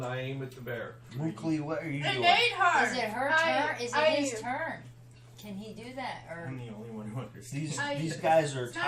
I aim at the bear. Mukli, what are you It doing? ate her! Is it her I- turn? Is I- it his turn? Can he do that? I'm Or the only one who understands. These guys are It's not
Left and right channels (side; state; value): both; identical; correlation 1.00